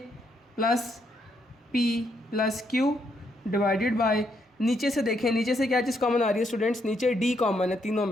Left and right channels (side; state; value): both; normal; correlation 0.76